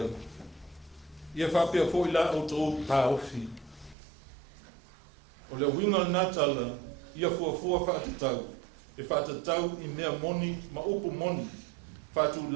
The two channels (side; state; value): left; drops out; at 4.0 s